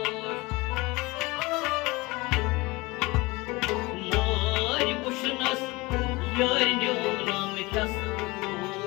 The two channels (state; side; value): quieter; right; 23.3 dB